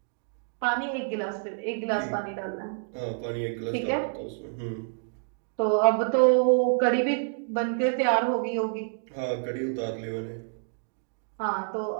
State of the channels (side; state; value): left; silent; digital silence